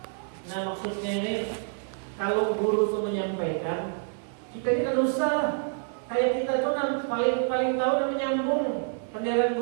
Nah, maksudnya ini kalau guru itu menyampaikan, kita ini kan usah lah. Kayak kita tuh paling tahu dan menyambung penderan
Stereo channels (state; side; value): silent; left; 60 dB below the other